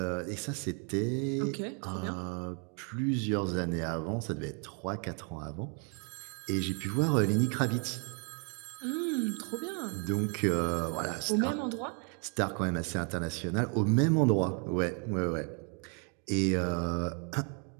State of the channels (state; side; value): quieter; left; 38.3 dB